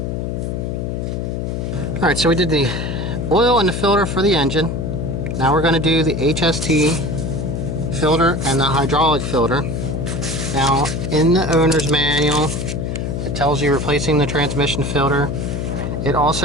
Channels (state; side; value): noise; left; hum, 3 dB below the sound